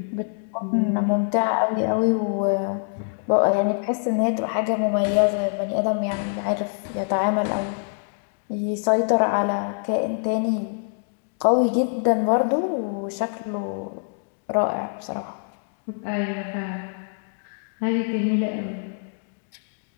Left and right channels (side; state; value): right; silent; 62 dB below the other